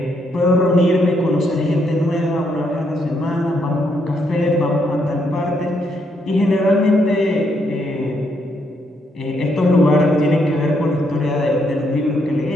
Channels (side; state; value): both; normal; correlation 0.75